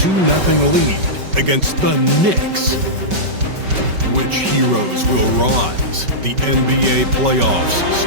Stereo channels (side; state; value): left; late; 5.2 ms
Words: lead against the Knicks. Which heroes will rise? The NBA playoffs